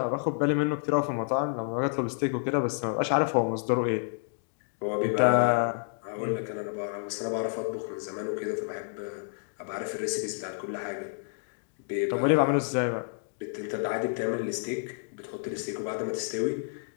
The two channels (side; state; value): right; silent; digital silence